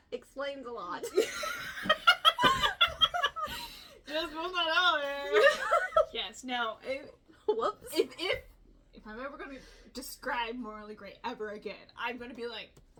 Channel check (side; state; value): both; identical; correlation 1.00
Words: explains a lot. Just put that out there. Yes, no. Whoops. If I'm ever gonna describe morally gray ever again, I'm gonna be like